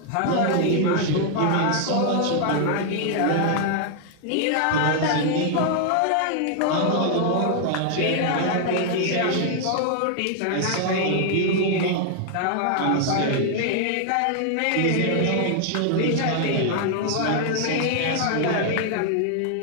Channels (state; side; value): different; both; correlation 0.00